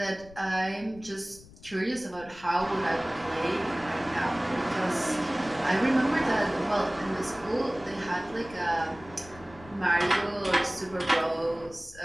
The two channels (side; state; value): left; noise; rumble, 21 dB below the sound